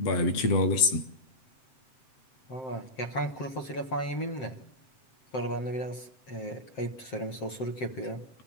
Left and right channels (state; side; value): late; right; 7.7 ms